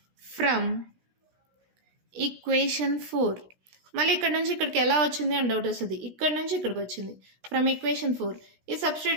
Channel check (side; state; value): left; late; 16 ms